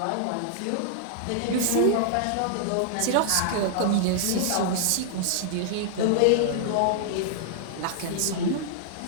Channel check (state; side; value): different; both; correlation -0.01